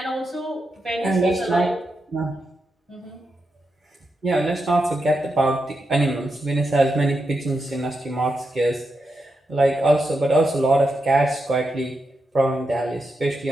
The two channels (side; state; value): both; normal; correlation 0.86